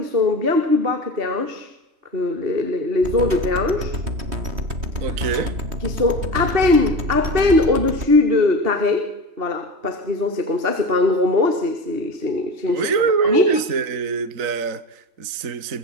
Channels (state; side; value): late; left; 3.2 ms